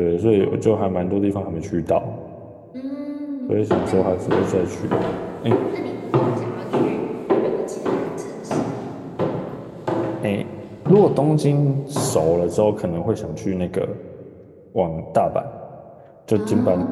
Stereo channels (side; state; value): both; identical; correlation 1.00